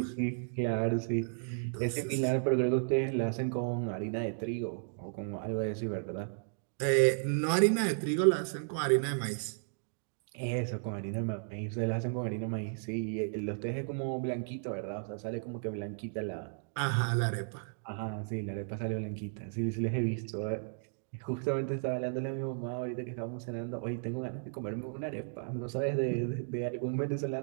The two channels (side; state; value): left; silent; digital silence